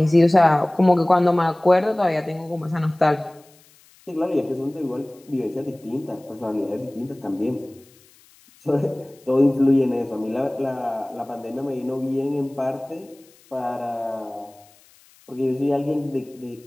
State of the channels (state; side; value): noise; left; hiss, 29 dB below the sound